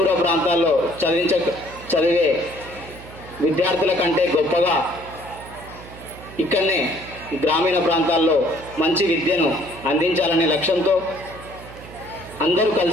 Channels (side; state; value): right; noise; hum, 17 dB below the sound